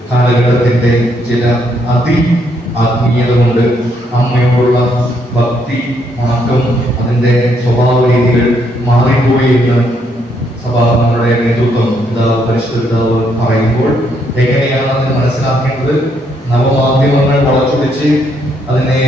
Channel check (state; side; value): normal; both; correlation 0.73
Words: കാലഘട്ടത്തിന്റെ ചില ആത്മീയത കൊണ്ട് അമ്മയോടുള്ള ഭക്തി വണക്കം അതിന്റെ സ്വഭാവ രീതികൾ മാറിപ്പോയി എന്ന് സഭാങ്ങളുടെ നേതൃത്വം പരിശുദ്ധ പിതാവ് പറയുമ്പോൾ എങ്ങനെയാണ് അതിനെ മനസ്സിലാക്കേണ്ടത്? നവമാധ്യമങ്ങൾ വളച്ചൊടിച്ച് അതിനെ